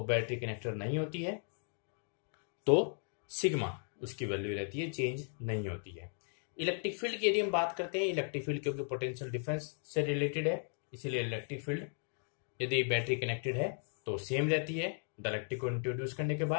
बैटरी कनेक्टेड नहीं होती है तो सिग्मा उसकी वैल्यू रहती है, चेंज नहीं होती है। इलेक्ट्रिक फील्ड की यदि हम बात करते हैं, इलेक्ट्रिक फील्ड क्योंकि पोटेंशियल डिफरेंस से रिलेटेड है, इसीलिए इलेक्ट्रिक फील्ड यदि बैटरी कनेक्टेड है तो सेम रहती है डाइलेक्ट्रिक को इंट्रोड्यूस करने के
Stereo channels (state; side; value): silent; right; 54 dB below the other